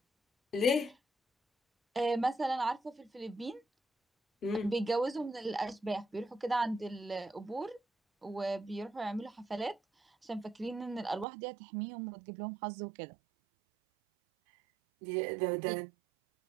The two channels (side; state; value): left; drops out; at 11.2 s